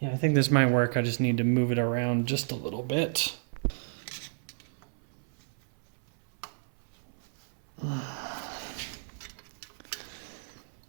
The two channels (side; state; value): left; silent; 57 dB below the other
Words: I think this might work. I just need to move it around just a little bit.